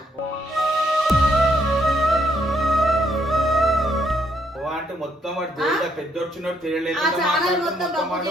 అంటే మొత్తం వాడు పెద్ద వచ్చినట్టు తెలియలేదు. ఆ ఛానల్ మొత్తం బబ్బు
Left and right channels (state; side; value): normal; both; correlation 0.73